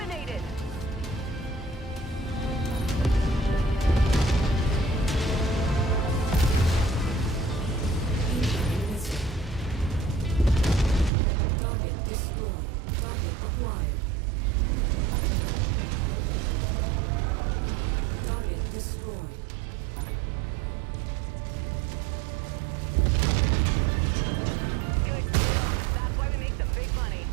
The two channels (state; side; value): drops out; left; at 11.1 s